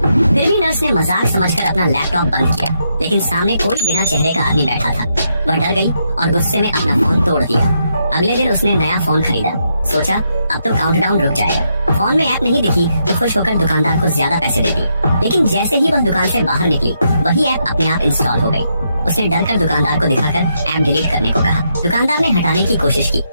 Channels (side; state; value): both; inverted; correlation -0.79